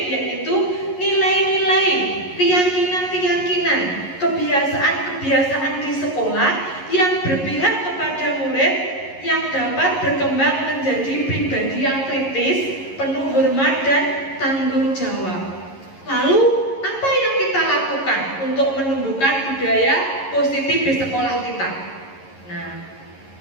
yaitu nilai-nilai, keyakinan-keyakinan, kebiasaan-kebiasaan di sekolah yang berpihak kepada murid yang dapat berkembang menjadi pribadi yang kritis, penuh hormat dan tanggung jawab. Lalu apa yang kita lakukan untuk menumbuhkan budaya positif di sekolah kita? Nah,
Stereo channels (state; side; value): late; right; 11 ms